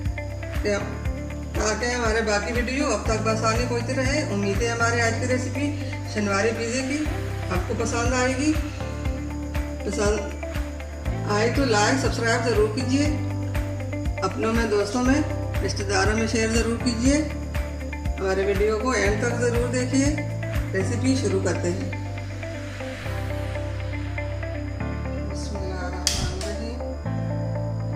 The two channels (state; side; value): identical; both; correlation 1.00